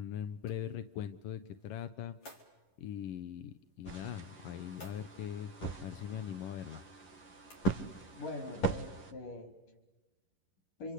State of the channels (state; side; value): late; right; 11 ms